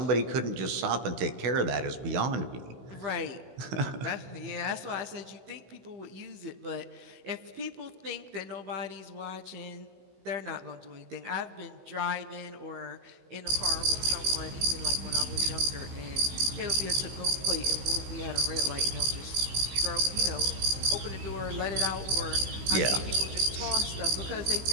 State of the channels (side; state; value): left; late; 16 ms